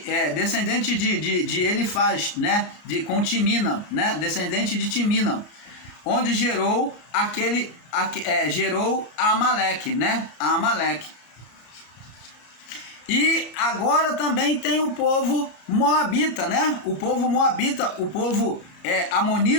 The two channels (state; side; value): late; right; 34 ms